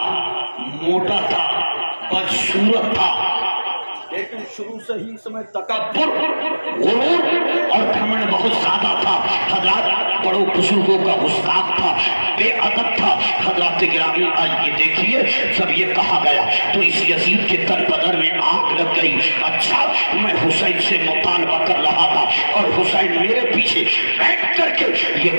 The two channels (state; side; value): inverted; both; correlation -1.00